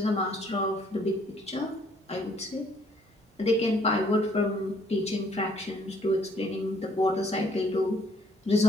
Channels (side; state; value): both; normal; correlation 0.64